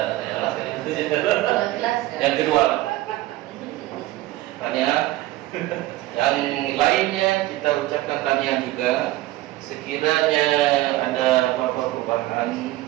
Yang kedua, tanya. Yang lainnya kita ucapkan tanya juga. Sekiranya ada apa-apa perubahan,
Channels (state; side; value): quieter; left; 16.9 dB